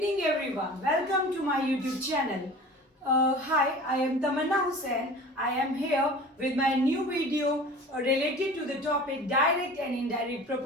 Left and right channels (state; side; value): normal; both; correlation 0.40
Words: everyone. Welcome to my YouTube channel. Hi, I am Tamanna Hussain. I am here with my new video related to the topic direct and indirect